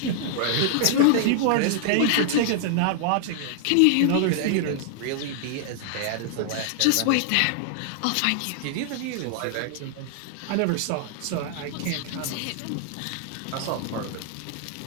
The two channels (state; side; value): different; both; correlation -0.01